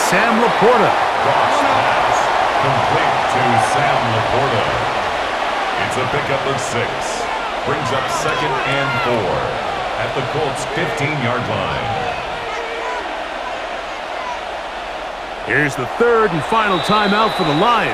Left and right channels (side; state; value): both; identical; correlation 1.00